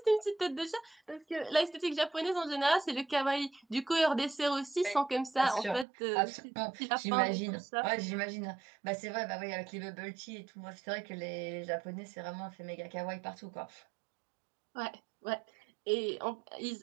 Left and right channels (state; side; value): drops out; left; at 5.9 s